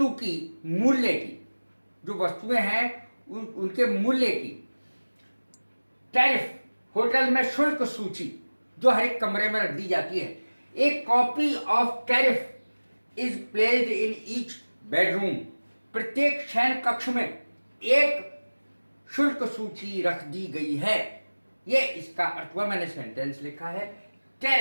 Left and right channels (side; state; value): both; inverted; correlation -1.00